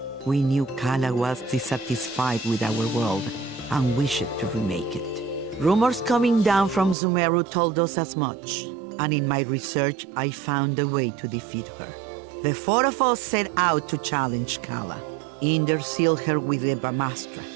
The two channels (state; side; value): drops out; left; at 7.0 s